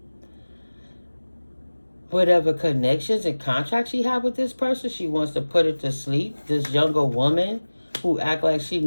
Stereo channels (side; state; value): both; inverted; correlation -1.00